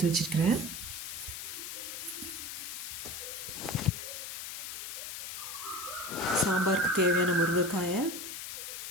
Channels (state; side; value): noise; left; hiss, 7 dB below the sound